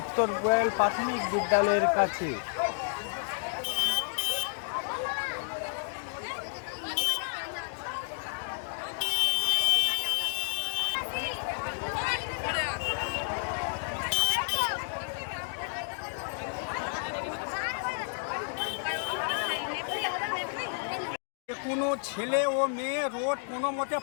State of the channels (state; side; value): silent; right; digital silence